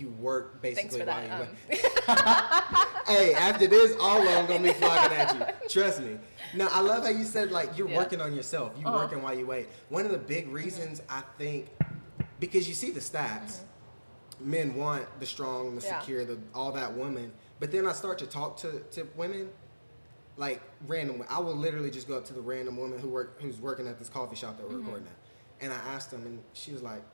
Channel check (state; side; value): inverted; both; correlation -1.00